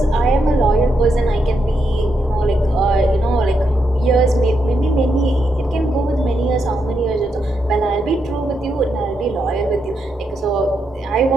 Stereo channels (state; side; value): normal; both; correlation 0.81